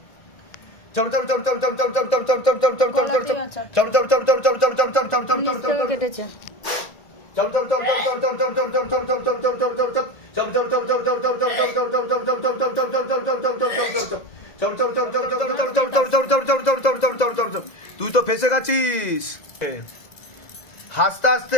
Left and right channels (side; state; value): right; late; 2.0 ms